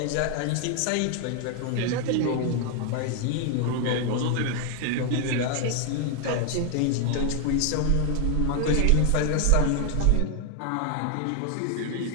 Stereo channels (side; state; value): both; different; correlation 0.00